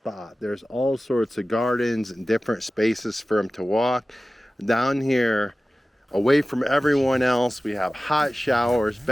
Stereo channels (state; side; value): normal; both; correlation 0.96